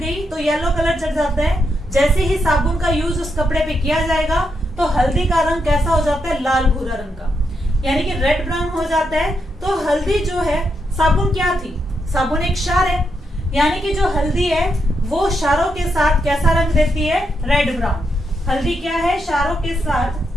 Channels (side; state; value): both; normal; correlation 0.82